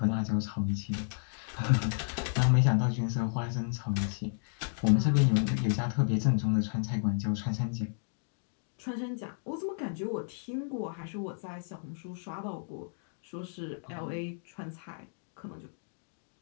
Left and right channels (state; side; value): silent; right; digital silence